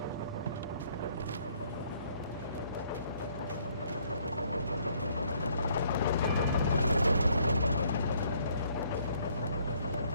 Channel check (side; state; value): both; inverted; correlation -0.65